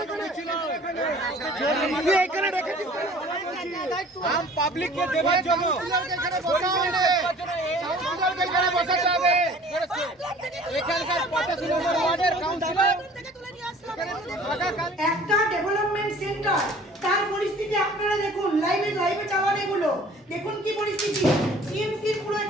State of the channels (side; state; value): both; normal; correlation 0.49